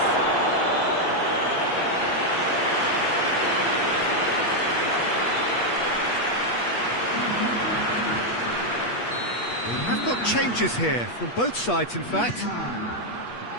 We have got changes here from both sides, in fact.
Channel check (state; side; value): late; right; 8.4 ms